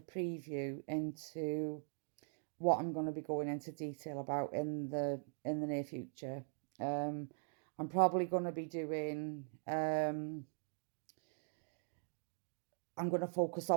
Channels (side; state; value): left; silent; digital silence